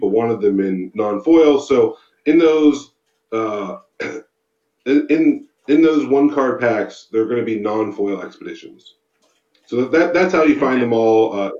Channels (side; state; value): both; identical; correlation 1.00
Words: wanted them in non-foil. So in those in those one card packs, they're going to be non-foil expeditions. So that's how you find them all,